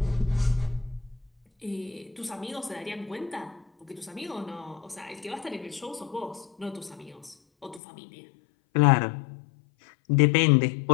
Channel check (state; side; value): drops out; right; at 7.8 s